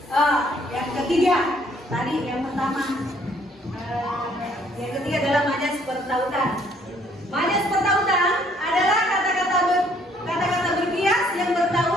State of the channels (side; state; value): both; normal; correlation 0.63